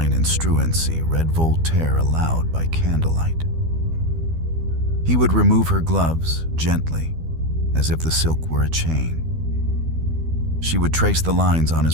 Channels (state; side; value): late; left; 12 ms